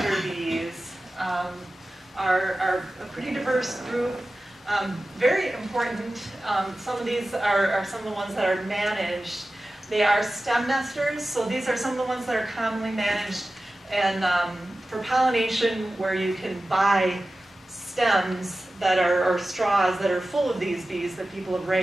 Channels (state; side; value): normal; both; correlation 0.95